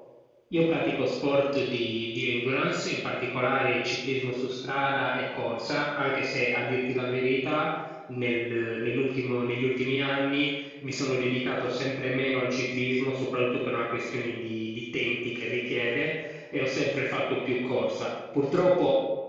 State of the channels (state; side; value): identical; both; correlation 1.00